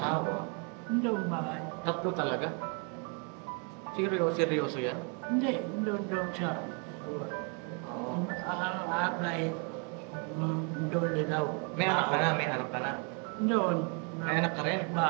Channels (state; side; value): quieter; left; 36.5 dB